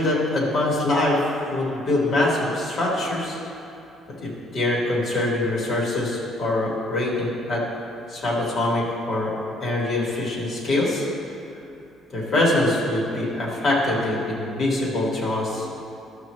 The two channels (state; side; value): normal; both; correlation 0.63